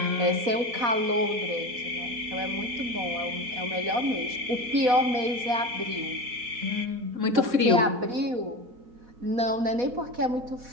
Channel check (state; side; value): late; left; 4.1 ms